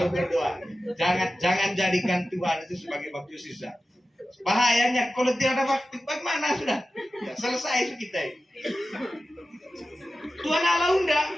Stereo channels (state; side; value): normal; both; correlation 0.94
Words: berdoa. Jangan jadikan Tuhan itu sebagai waktu sisa. Bahayanya kalau tidak ada waktu, bagaimana sudah? Ya, selesai kita ini. Tuhan Allah undang